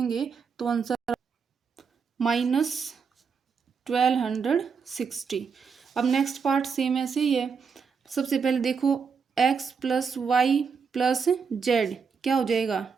तो आंसर -1260। अब नेक्स्ट पार्ट सेम ऐसे ही है, सबसे पहले देखो x plus y plus z क्या हो जाएगा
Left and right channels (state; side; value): quieter; left; 5.8 dB